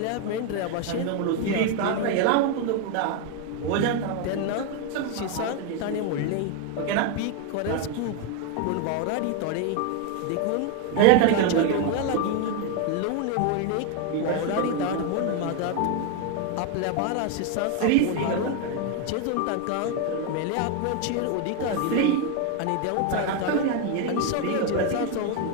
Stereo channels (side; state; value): both; different; correlation 0.01